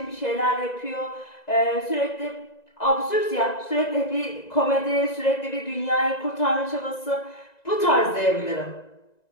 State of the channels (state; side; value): late; right; 2.0 ms